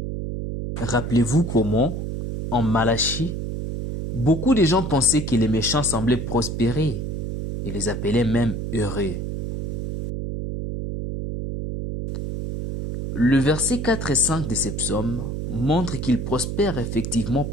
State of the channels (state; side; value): noise; right; hum, 4 dB below the sound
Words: Rappelez-vous comment, en Malachie, beaucoup de gens pensaient que les méchants semblaient prospérer et les appelaient même heureux. Le verset 4 et 5 de ces psaumes montrent qu'ils prospèrent effectivement